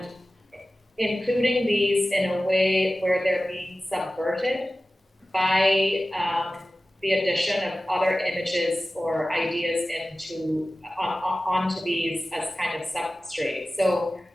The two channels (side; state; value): both; normal; correlation 0.96